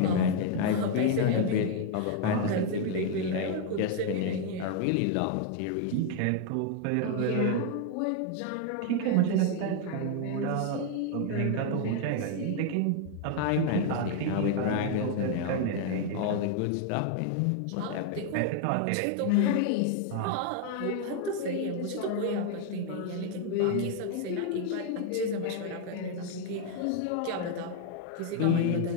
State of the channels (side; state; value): both; different; correlation 0.00